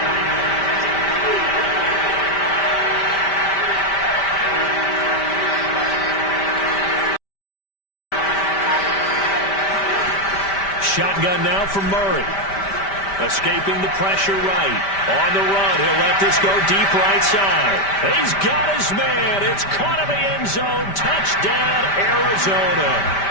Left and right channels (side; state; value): right; late; 5.1 ms